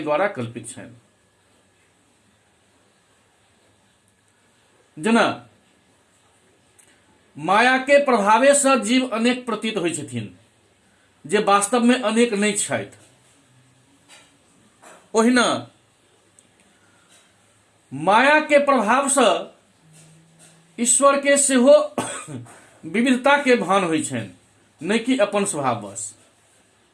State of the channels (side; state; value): both; identical; correlation 1.00